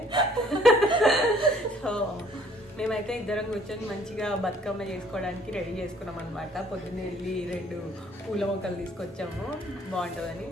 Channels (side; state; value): both; normal; correlation 0.59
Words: సో మేమైతే ఇద్దరం కూర్చొని మంచిగా బతుకమ్మ చేసుకోవడానికి రెడీ చేసుకున్నాం అనమాట. పొద్దున్నే వెళ్ళి 2 పూల మొక్కలు తీసుకొచ్చాము బాగుంటుందని.